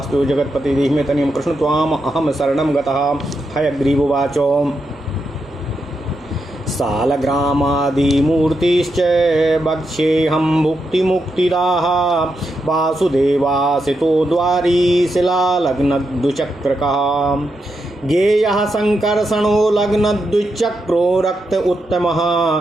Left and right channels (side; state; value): both; normal; correlation 0.85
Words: जगतपति देहि में तनियम कृष्ण त्वाम अहम शरणं गतः हयग्रीवोवाच सालग्रामादिमूर्तिश्च वक्ष्येऽहं भुक्तिमुक्तिदाः वासुदेवासितो द्वारी शिलालग्नद्विचक्रकः गेयः संकर्षणो लग्नद्विचक्रो रक्त उत्तमः